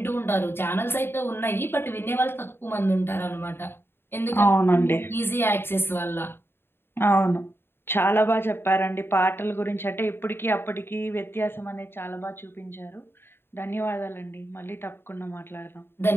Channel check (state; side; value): late; right; 0.11 ms